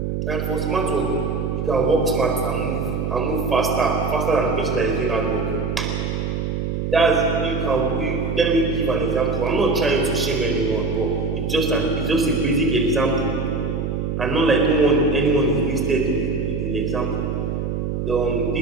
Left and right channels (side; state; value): right; noise; hum, 2 dB below the sound